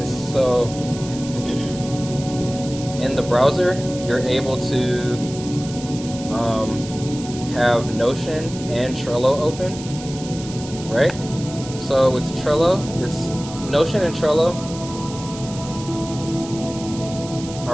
So, in the browser, you're able to have Notion and Trello open, right? So with Trello, it's Notion and Trello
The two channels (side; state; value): right; noise; hiss, 14 dB below the sound